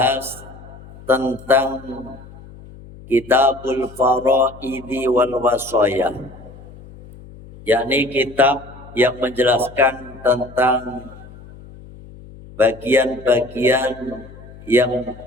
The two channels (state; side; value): noise; left; hum, 19 dB below the sound